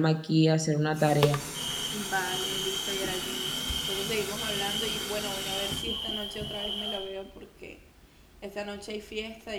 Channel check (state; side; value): identical; both; correlation 1.00